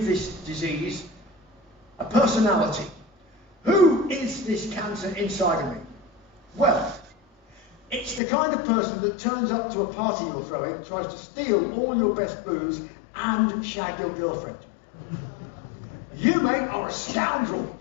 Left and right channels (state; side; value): drops out; right; at 8.2 s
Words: this disease a personality. Who is this cancer inside of me? Well, it's the kind of person that turns up to a party you're throwing, tries to steal all your best booze and shag your girlfriend. You, mate, are a scoundrel.